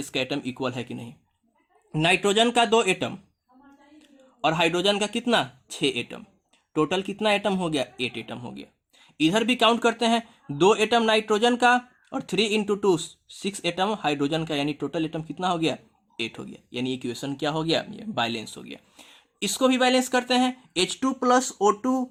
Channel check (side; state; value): both; identical; correlation 1.00